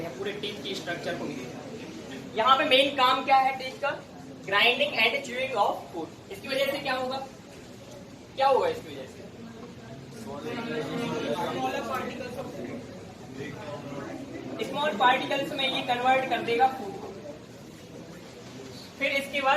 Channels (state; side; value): identical; both; correlation 1.00